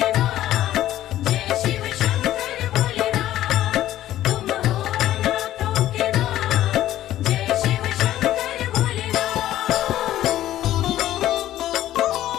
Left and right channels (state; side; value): quieter; right; 13.4 dB